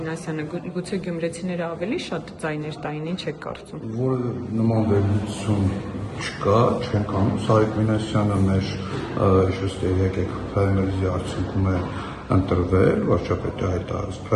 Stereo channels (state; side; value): identical; both; correlation 1.00